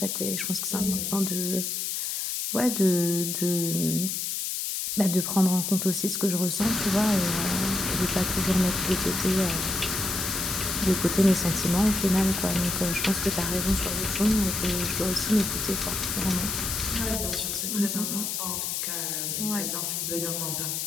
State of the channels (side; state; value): left; noise; hiss, 2 dB below the sound